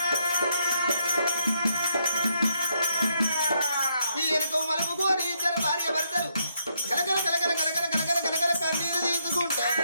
ఈ ఎనకో మలుపుకోని ఇద్దరు భార్య భర్తలు కలకల కలకల కలకల కలకల కలకల కన్నీరు తీసుకుంటారు.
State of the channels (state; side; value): inverted; both; correlation -0.76